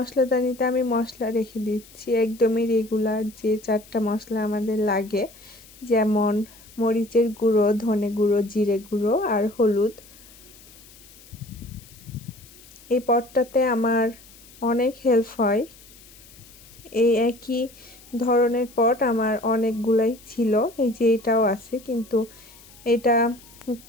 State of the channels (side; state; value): left; noise; hiss, 23 dB below the sound